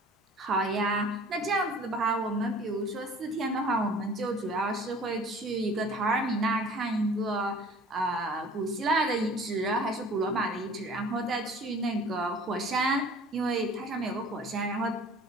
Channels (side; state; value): both; normal; correlation 0.48